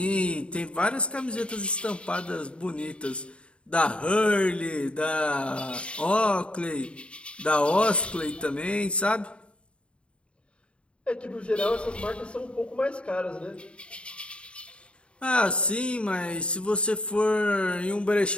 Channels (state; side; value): late; right; 0.057 ms